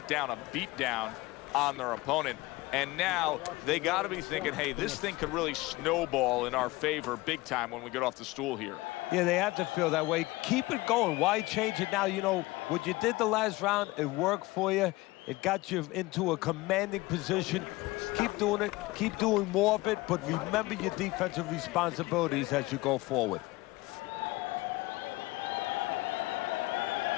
down a beatdown on their opponent. And now they got to be thinking, hey, this thing could really snowball in our favor big time when we get off the stool here. Yeah, they have to feel that way. Keep it going. Why change it now? You know, what you did the last round, it worked for you. It got you into a commanding position. Keep doing it. Keep doing more of it. But remember your defensive responsibilities as you go forward.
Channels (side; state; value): right; quieter; 20.6 dB